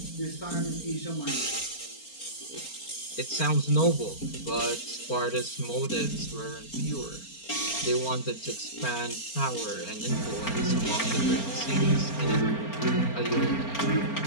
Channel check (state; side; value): late; right; 4.4 ms